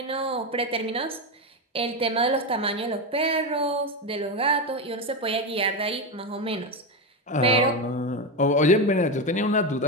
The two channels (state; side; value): normal; both; correlation 0.13